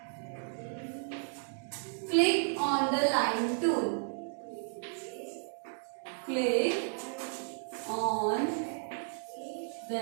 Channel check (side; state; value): left; silent; digital silence